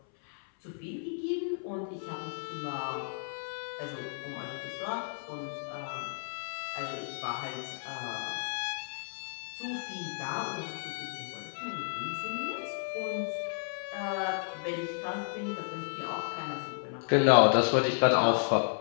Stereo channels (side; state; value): right; silent; 56 dB below the other